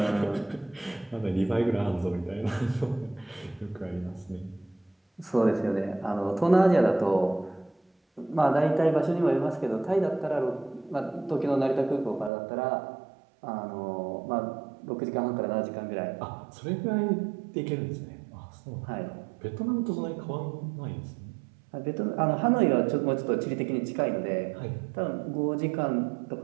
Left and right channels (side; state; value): left; drops out; at 12.3 s